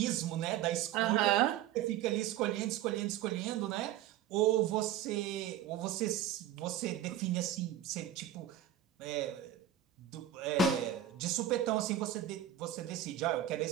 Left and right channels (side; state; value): left; quieter; 10.7 dB